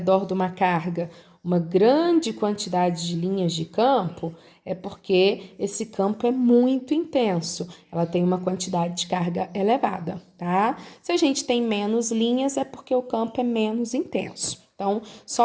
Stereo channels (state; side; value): identical; both; correlation 1.00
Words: de uma carga uma grande quantidade de linhas de campo, é porque esse campo é muito intenso, ela tem uma quantidade de carga elevada, tá? Se a gente tem menos linhas, é porque o campo é menos intenso. Então,